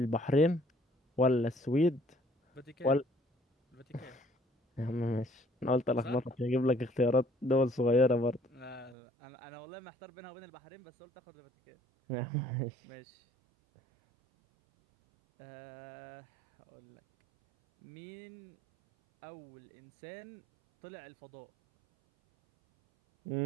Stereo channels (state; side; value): drops out; left; at 9.0 s